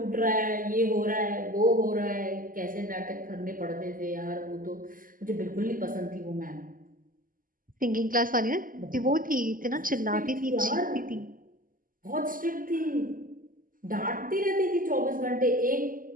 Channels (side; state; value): left; late; 0.41 ms